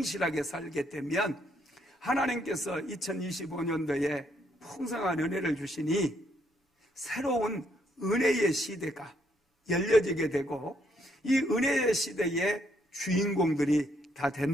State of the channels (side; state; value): both; normal; correlation 0.72